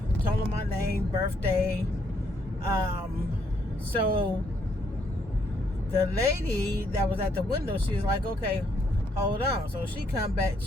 told them my name, birthday. So the lady that was at the window, she was like, okay, hold on. So she come back,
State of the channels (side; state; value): both; normal; correlation 0.72